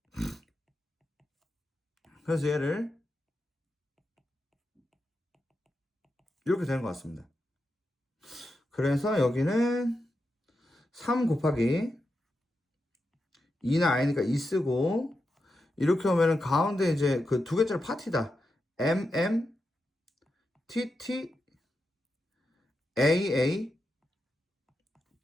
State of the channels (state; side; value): normal; both; correlation 0.88